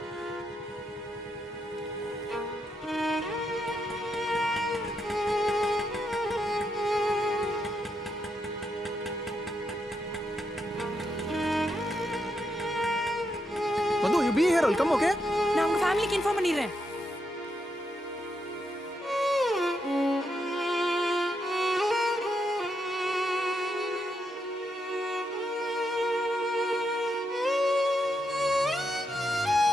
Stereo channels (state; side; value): normal; both; correlation 0.81